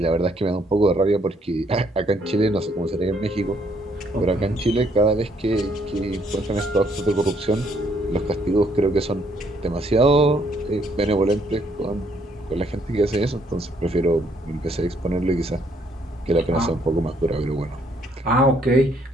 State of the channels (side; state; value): both; normal; correlation 0.68